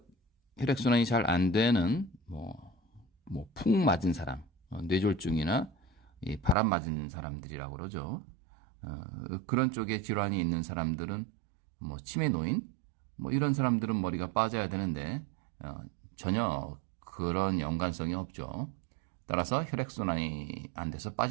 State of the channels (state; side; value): drops out; left; at 6.6 s